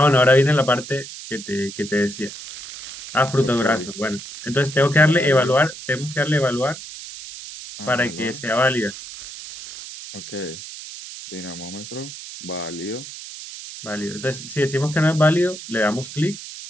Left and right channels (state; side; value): noise; right; hiss, 12 dB below the sound